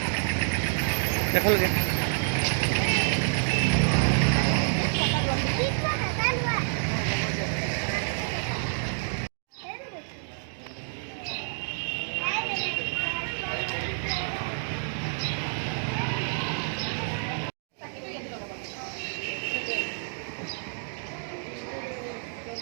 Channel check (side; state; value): left; silent; digital silence